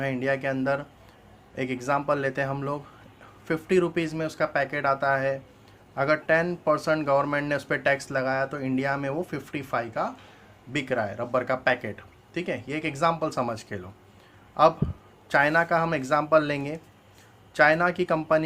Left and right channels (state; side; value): identical; both; correlation 1.00